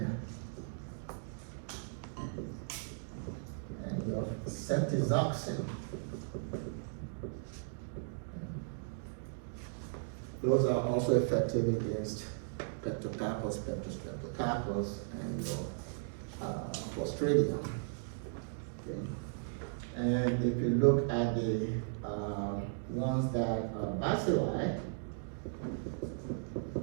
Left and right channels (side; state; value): left; silent; digital silence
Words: your ceftriaxone. Those are also effective against Streptococcus, Streptococcus, and your Clostridium. Okay. And if you look at the ones that are bacilli,